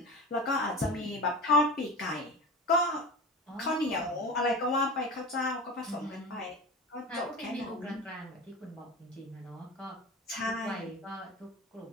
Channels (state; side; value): normal; both; correlation 0.31